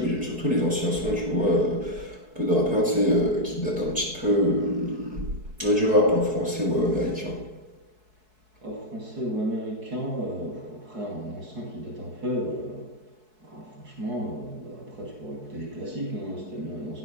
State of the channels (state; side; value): late; left; 4.6 ms